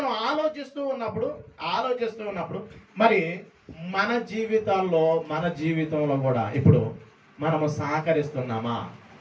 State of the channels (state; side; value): identical; both; correlation 1.00